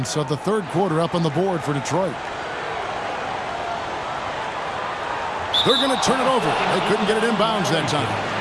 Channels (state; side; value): identical; both; correlation 1.00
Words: of the third quarter up on the board for Detroit. They're going to turn it over. They couldn't get it inbounds that time.